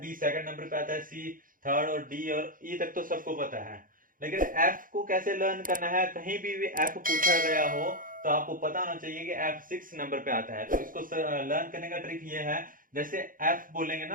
सेकंड नंबर पे आता है, सी थर्ड और डी और ई तक तो सबको पता है। लेकिन एफ को कैसे लर्न करना है, कहीं भी एफ पूछा गया हो तो आपको पता होना चाहिए कि एफ 6 नंबर पे आता है। तो इसको लर्न करने का ट्रिक ये है, जैसे एफ बोलेंगे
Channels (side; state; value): left; late; 0.40 ms